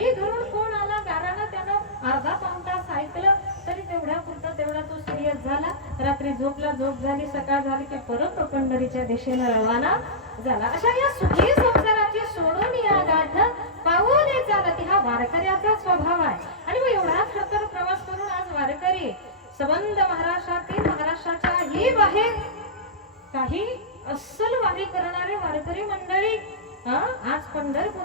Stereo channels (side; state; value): both; normal; correlation -0.15